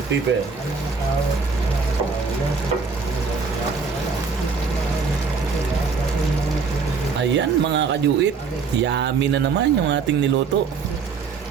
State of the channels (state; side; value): quieter; left; 5.1 dB